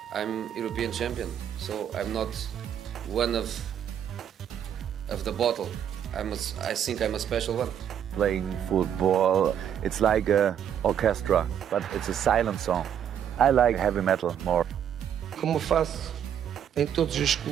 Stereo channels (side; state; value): left; quieter; 9.2 dB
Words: I'm European champion, so I'm not one of the bottle. I think I'm a special one. Playing football, it's like an orchestra, but it's a silent song. I like heavy metal more. Como faço em todos os